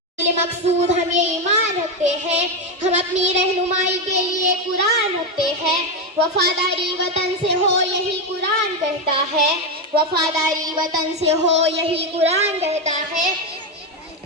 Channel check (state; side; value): normal; both; correlation 0.09